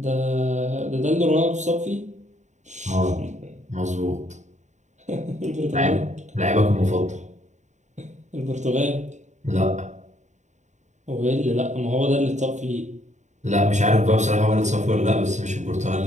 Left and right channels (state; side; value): late; left; 0.34 ms